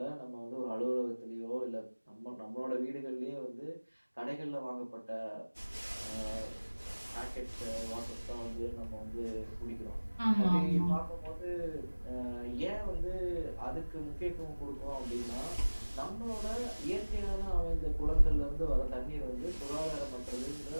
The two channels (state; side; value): inverted; both; correlation -1.00